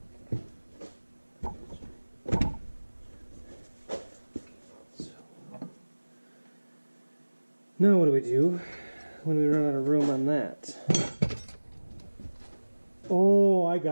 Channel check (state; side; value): inverted; both; correlation -1.00